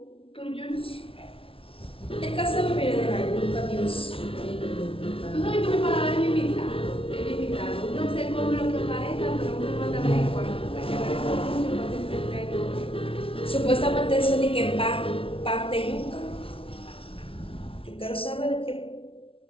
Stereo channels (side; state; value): right; late; 0.26 ms